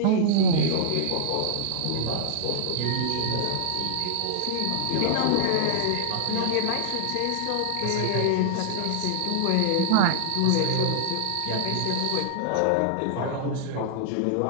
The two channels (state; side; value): different; both; correlation -0.01